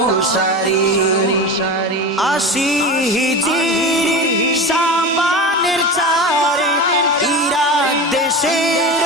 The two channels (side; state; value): both; normal; correlation 0.28